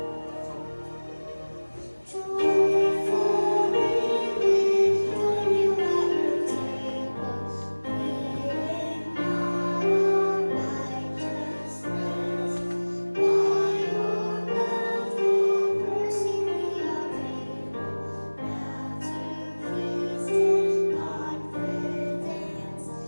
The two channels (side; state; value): both; inverted; correlation -1.00